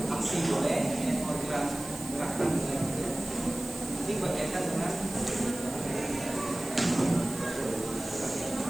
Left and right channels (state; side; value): noise; right; hiss, 13 dB below the sound